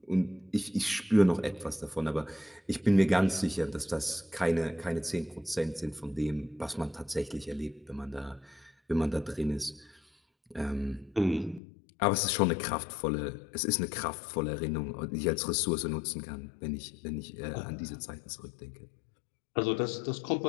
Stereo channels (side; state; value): right; drops out; at 11.6 s